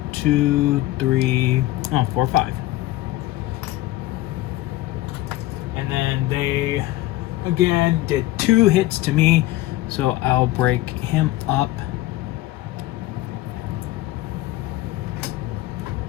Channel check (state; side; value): quieter; right; 16.6 dB